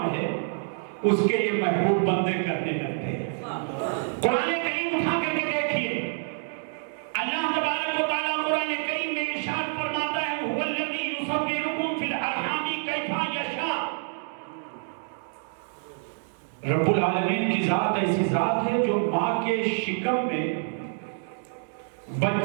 ہے اس کے یہ محبوب بندے کرنے لگتے ہیں۔ قرآن کریم اٹھا کر کے دیکھیے، اللہ تبارک و تعالیٰ قرآن کریم میں ارشاد فرماتا ہے هو الذی یصورکم فی الارحام کیف یشاء۔ رب العالمین کی ذات ایسی ذات ہے جو ماں کے شکم میں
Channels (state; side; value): silent; left; digital silence